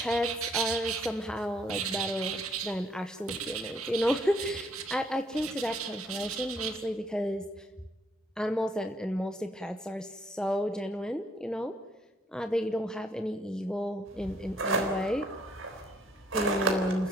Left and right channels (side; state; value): both; normal; correlation 0.67